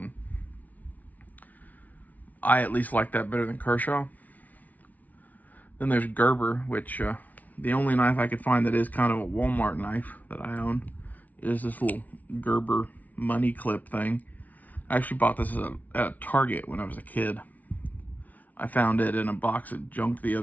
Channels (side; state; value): right; late; 0.074 ms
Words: I at least like that better than Kershaw. Then there's Gerber, which the only knife I could find that is kind of a Walmart knife that I own is this little Gerber money clip thing. I actually bought this at a Target when I was a kid. I found it in a box of junk the